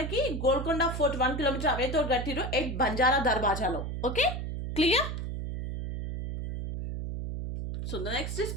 Golconda fort 1 kilometre away తోటి కట్టిరు at Banjara దర్వాజాలో. Okay, clear? So the next is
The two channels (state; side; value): noise; right; hum, 5 dB below the sound